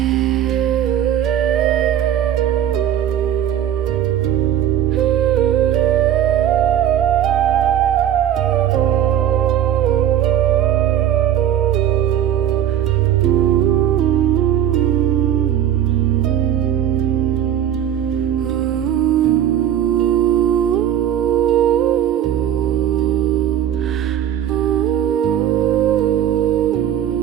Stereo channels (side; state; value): left; quieter; 10.8 dB